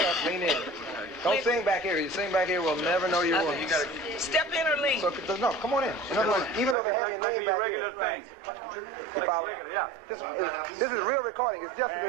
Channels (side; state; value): left; drops out; at 6.8 s